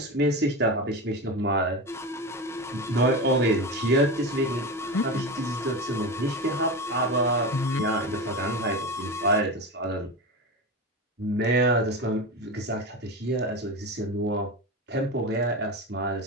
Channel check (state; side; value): normal; both; correlation 0.23